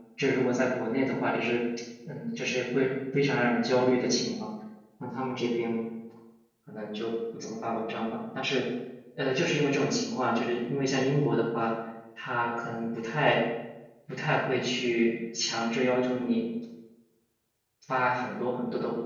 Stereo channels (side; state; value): both; identical; correlation 1.00